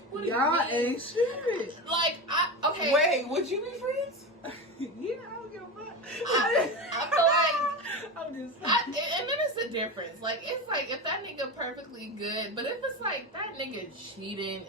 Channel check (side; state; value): both; normal; correlation 0.21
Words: What do Y'all you mean? ain't shit. Like, okay. Wait, would you be friends? Yeah, I don't give a fuck. I feel like I'm just and then it's a difference. Like, it's like if that nigga perfectly good, but if it's like that nigga cheating